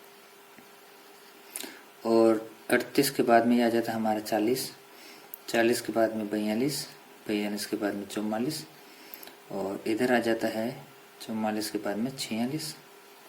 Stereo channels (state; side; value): identical; both; correlation 1.00